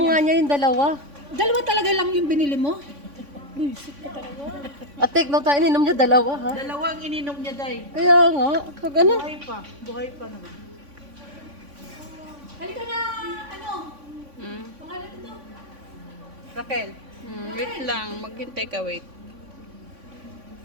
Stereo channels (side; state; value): left; late; 3.5 ms